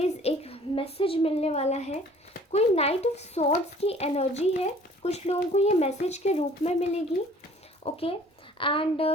एक मैसेज मिलने वाला है। कोई नाइट ऑफ सॉर्ड्स की एनर्जी है, कुछ लोगों को ये मैसेज के रूप में मिलेगी। ओके, एंड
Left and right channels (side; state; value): both; normal; correlation 0.53